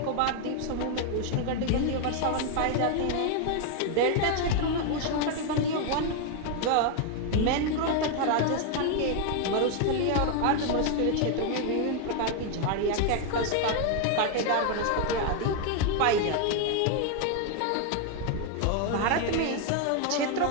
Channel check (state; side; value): different; both; correlation 0.01